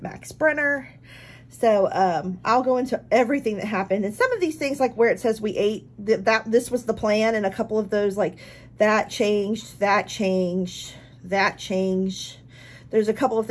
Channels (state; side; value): identical; both; correlation 1.00